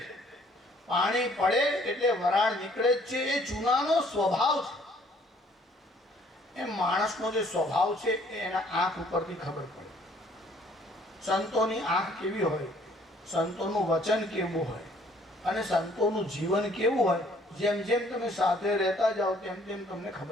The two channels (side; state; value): both; normal; correlation 0.60